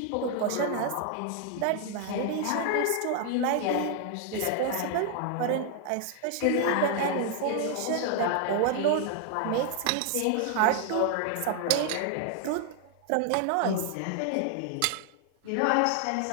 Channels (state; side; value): different; both; correlation 0.00